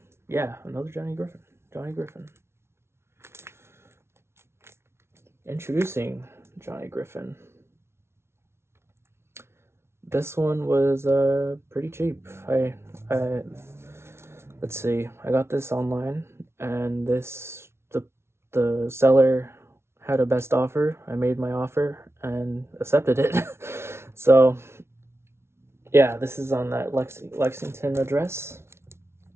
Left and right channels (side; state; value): left; late; 0.12 ms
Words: yeah, another Johnny Griffin. Introducing Johnny Griffin. this one was pretty cheap. I let's see. I got this online, and the seller had a best offer. I made my offer and accepted it. So yeah, this is on that Lexington address,